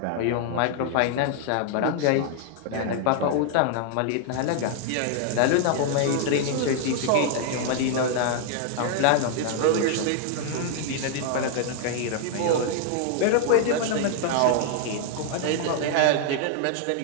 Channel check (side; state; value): both; different; correlation 0.00